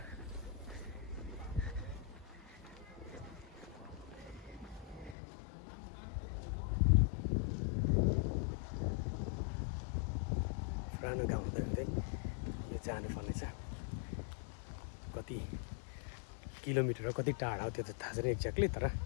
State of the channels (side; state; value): right; drops out; at 5.2 s